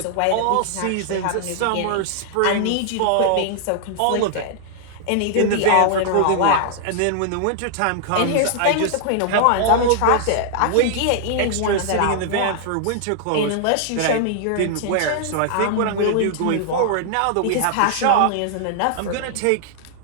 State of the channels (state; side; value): different; both; correlation -0.01